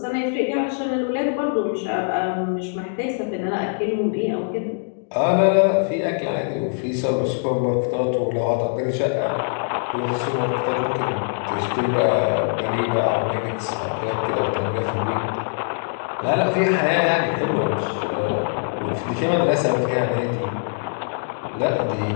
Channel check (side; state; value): right; silent; digital silence